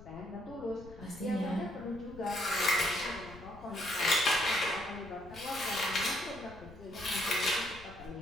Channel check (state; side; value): noise; left; rumble, 18 dB below the sound